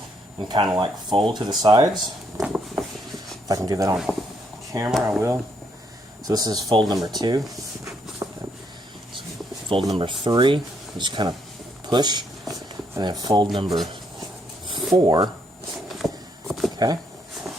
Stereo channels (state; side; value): normal; both; correlation 0.73